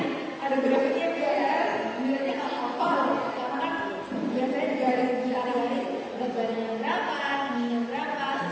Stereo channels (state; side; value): identical; both; correlation 1.00